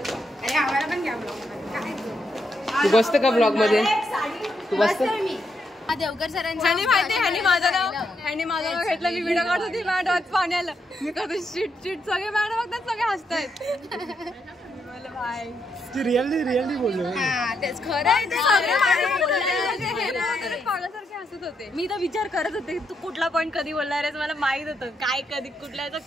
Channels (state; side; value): normal; both; correlation 0.80